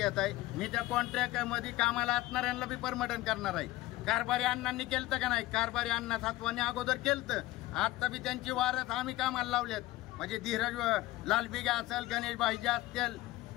मी त्या कॉन्ट्रॅक्टमध्ये कामाला असणाऱ्यांना बी परमटन करणार आहे. कारभारी अण्णांनी केलं का नाही? कारभारी अण्णा सातवानी अगोदर केलं. आता बी त्यांची वारस आम्ही कामाला लावल्यात. म्हणजे धीरज लालबिगा असेल, गणेश भाईजी असतील,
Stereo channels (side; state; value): right; quieter; 17.5 dB